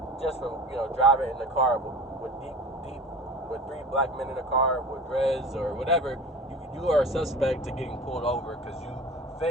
just for, driving in the car with with three black men in a car with dreads or whatever. You are a suspect to getting pulled over because you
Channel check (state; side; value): normal; both; correlation 0.38